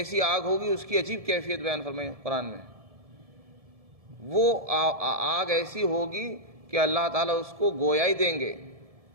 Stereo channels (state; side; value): late; left; 1.7 ms